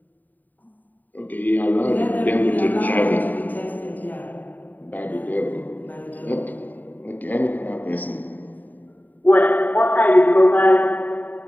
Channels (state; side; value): late; right; 0.086 ms